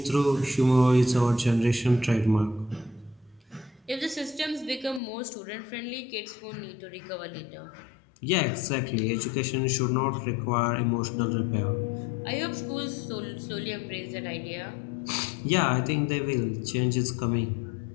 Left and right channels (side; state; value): right; drops out; at 5.0 s